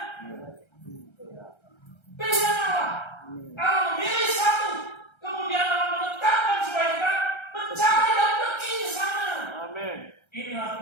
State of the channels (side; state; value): right; late; 1.3 ms